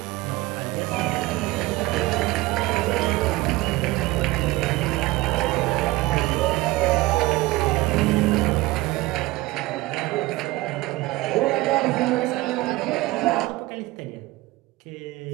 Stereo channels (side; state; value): left; quieter; 19.4 dB